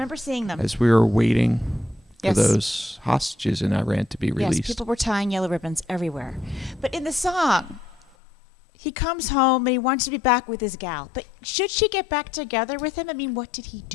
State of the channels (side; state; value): right; drops out; at 8.2 s